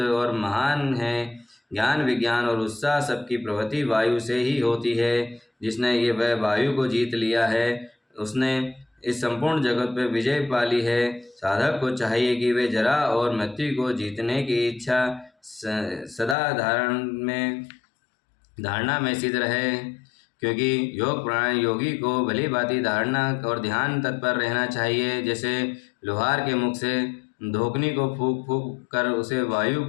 और महान है। ज्ञान विज्ञान और उत्साह सबकी प्रवृत्ति वायु से ही होती है। जिसने ये वह वायु को जीत लिया है उसने इस संपूर्ण जगत पर विजय पाली है। साधक को चाहिए कि वे जरा और मृत्यु को जीतने की इच्छा सदा धारणा में सिद्ध रहे, क्योंकि योग प्राणायाम योगी को भली भांति धारणा और ध्यान तत्पर रहना चाहिए। जैसे लोहार के मुख से धोकनी को फूंक फूंक कर उसे वायु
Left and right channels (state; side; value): drops out; right; at 16.4 s